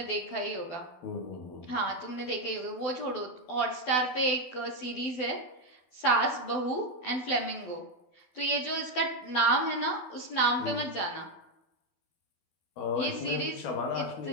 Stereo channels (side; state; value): right; late; 12 ms